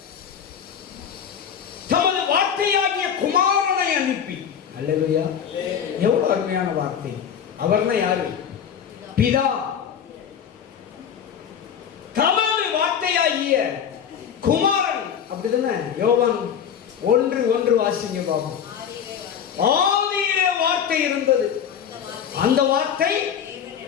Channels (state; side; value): quieter; right; 8.1 dB